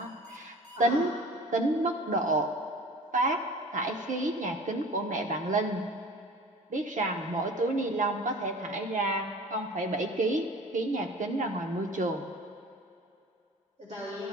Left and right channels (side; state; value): both; normal; correlation 0.42